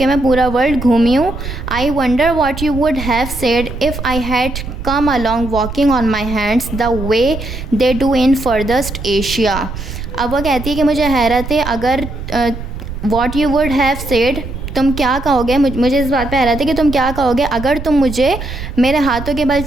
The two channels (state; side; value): noise; right; rumble, 8 dB below the sound